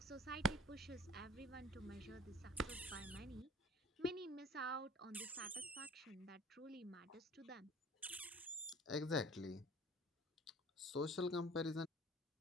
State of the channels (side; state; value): both; normal; correlation 0.46